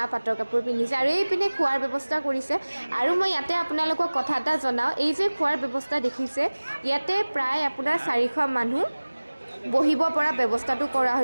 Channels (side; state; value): both; inverted; correlation -1.00